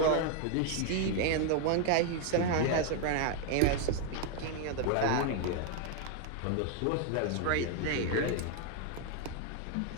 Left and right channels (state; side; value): different; both; correlation 0.01